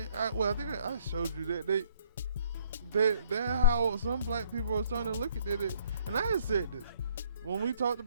think I showed you that how some black people are starting to look at it. And I had said this when we talked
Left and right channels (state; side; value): inverted; both; correlation -0.62